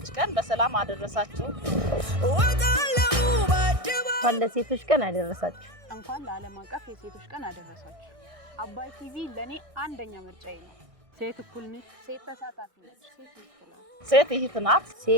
ቀን በሰላም አደረሳችሁ። እንኳን ለሴቶች ቀን አደረሳችሁ። ሴት እህት ናት።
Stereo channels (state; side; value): late; left; 1.6 ms